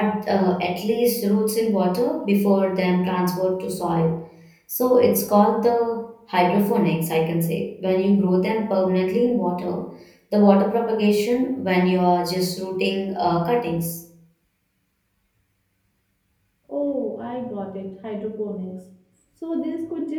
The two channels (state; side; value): identical; both; correlation 1.00